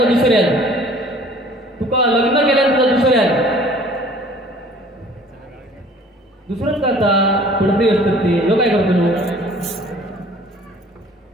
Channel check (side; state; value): both; normal; correlation 0.52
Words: दुसऱ्यात तुका लग्न केल्यान तुका दुसऱ्यात दुसरंच करता पुढे असतात ते लोक काय करतो